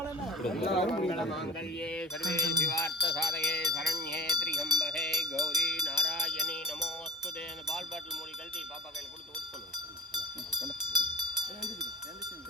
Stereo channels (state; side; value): normal; both; correlation 0.40